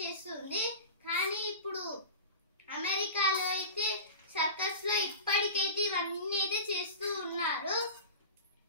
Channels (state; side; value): inverted; both; correlation -0.32